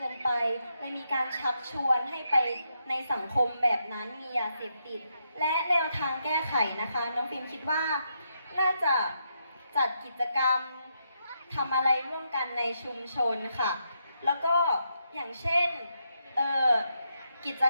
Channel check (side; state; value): both; inverted; correlation -0.81